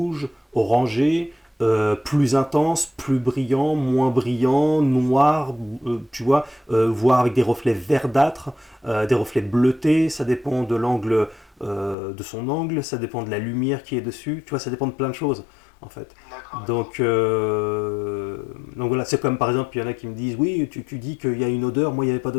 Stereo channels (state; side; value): drops out; right; at 12.0 s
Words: orangé, plus intense, plus brillant, noir, tu vois, voire avec des reflets verdâtres, des reflets bleutés, ça dépend de l'angle, de son angle, ça dépend de la lumière qui est dessus, tu vois, ça dépend de plein de choses, en fait. D'accord, d'accord. Donc, donc voilà, c'est comme par exemple, il y en a qui me disent, oui, tu dis qu'il y a une odeur, moi il n'y avait pas